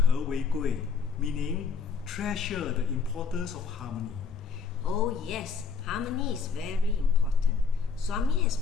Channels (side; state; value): right; quieter; 5.6 dB